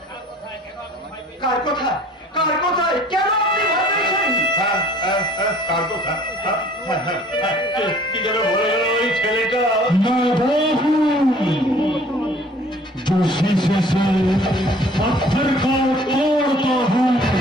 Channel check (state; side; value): normal; both; correlation 0.53